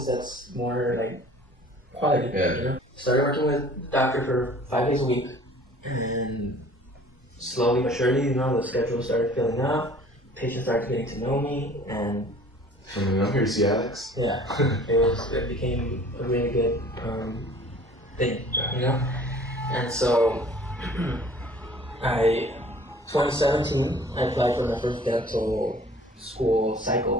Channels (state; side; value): normal; both; correlation 0.50